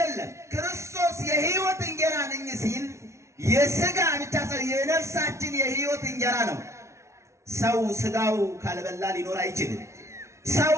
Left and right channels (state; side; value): late; left; 0.13 ms